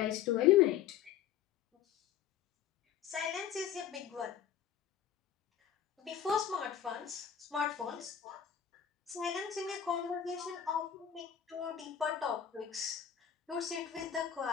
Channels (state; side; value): quieter; right; 9.2 dB